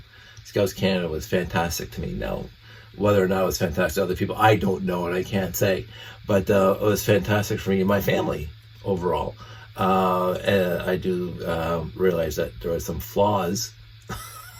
Scouts Canada was fantastic to me. Now, whether or not it was fantastic to other people, I don't know, and I can't say. But it was fantastic for me and my family overall. And I do realize that there are some flaws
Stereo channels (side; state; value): both; identical; correlation 1.00